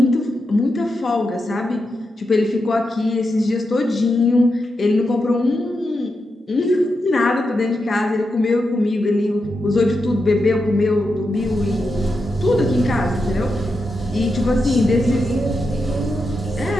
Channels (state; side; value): normal; both; correlation 0.87